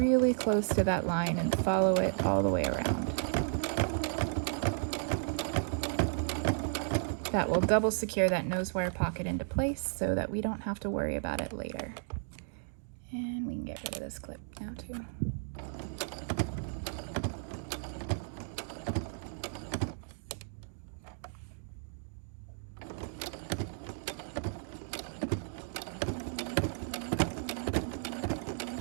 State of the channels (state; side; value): silent; left; digital silence